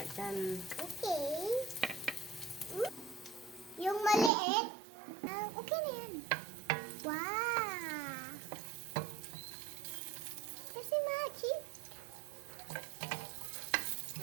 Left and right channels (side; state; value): left; drops out; at 4.3 s